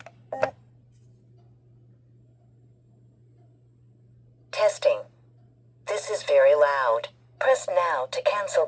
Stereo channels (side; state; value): both; identical; correlation 1.00